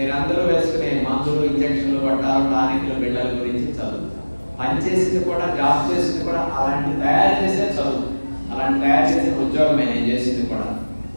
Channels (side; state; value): both; inverted; correlation -1.00